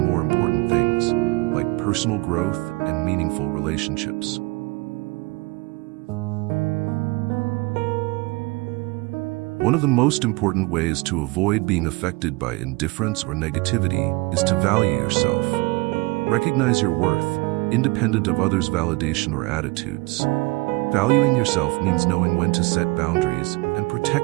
more important things, like personal growth and meaningful relationships. One of the most important ways to avoid being affected by indifference or negativity is to value yourself. Recognize your worth, independent of others' validation or attitudes. Valuing yourself means knowing when to set boundaries and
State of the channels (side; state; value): left; quieter; 25.0 dB